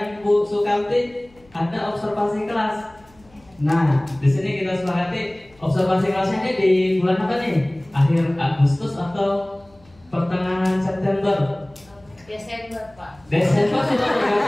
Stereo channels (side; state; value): left; noise; hum, 29 dB below the sound